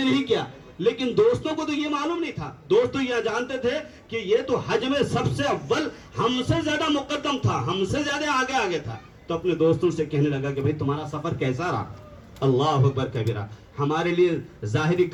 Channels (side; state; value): both; identical; correlation 1.00